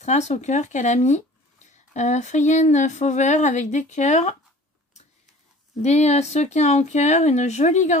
au cœur qu'elle a mis. Frienne Fauver avec des cœurs. Des sequins en cœur. Une jolie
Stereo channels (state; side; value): normal; both; correlation 0.46